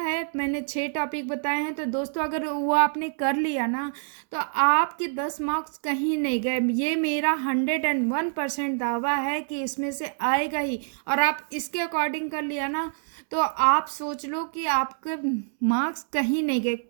मैंने 6 टॉपिक बताए हैं, तो दोस्तों अगर वो आपने कर लिया ना तो आपके 10 मार्क्स कहीं नहीं गए। ये मेरा 101% दावा है कि इसमें से आएगा ही, और आप इसके अकॉर्डिंग कर लिया ना तो आप सोच लो कि आपके मार्क्स कहीं नहीं गए,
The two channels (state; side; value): silent; left; 61 dB below the other